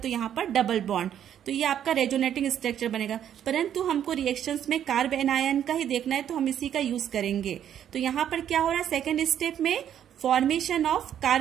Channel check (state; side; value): quieter; left; 9.9 dB